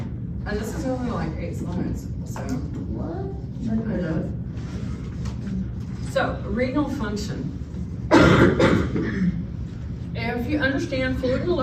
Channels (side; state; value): both; identical; correlation 1.00